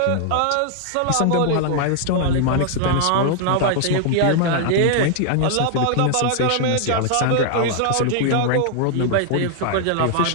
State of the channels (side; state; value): both; different; correlation 0.00